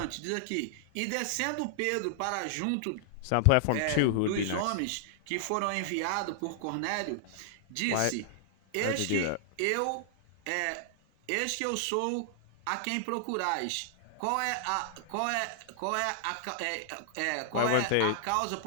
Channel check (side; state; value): both; different; correlation -0.01